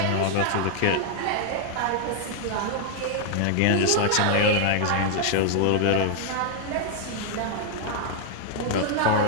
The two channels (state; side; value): different; both; correlation 0.00